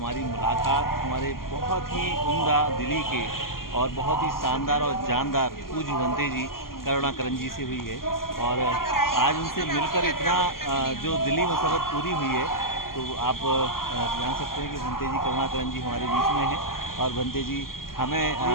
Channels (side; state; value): right; late; 0.92 ms